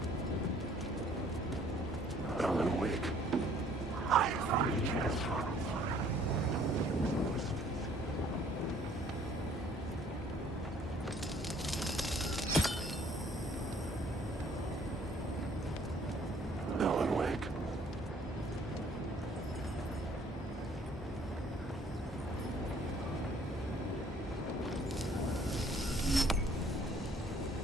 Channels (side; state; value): both; normal; correlation 0.59